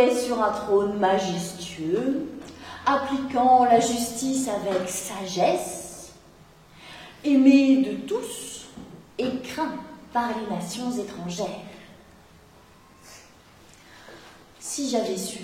sur un trône majestueux, appliquant la justice avec sagesse, aimé de tous et craint par les nations étrangères. Si j'avais su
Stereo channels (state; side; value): identical; both; correlation 1.00